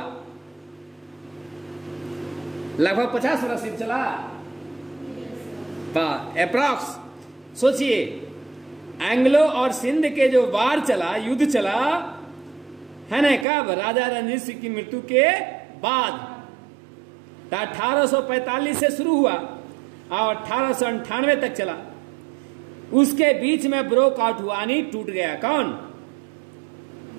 लगभग 50 वर्ष युद्ध चला, अप्रॉक्स। सोचिए, एंग्लो और सिंध के जो वार चला, युद्ध चला, है ना, कब? राजा रणजीत सिंह की मृत्यु के बाद। 1845 से शुरू हुआ और 1898 तक चला। उसके बीच में ब्रोक आउट हुआ, यानी टूट गया। कौन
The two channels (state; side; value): drops out; left; at 13.5 s